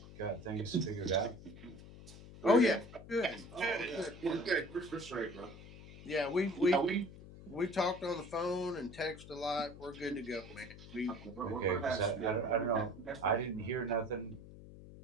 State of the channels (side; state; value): left; noise; hum, 16 dB below the sound